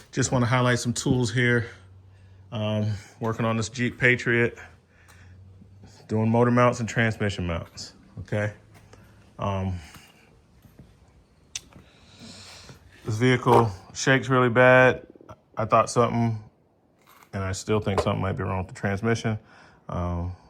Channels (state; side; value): identical; both; correlation 1.00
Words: just want to highlight some tools here. Working on this Jeep Patriot, doing motor mounts and transmission mounts, okay? This vehicle shakes really bad. I thought something, and I still think something might be wrong with the transmission,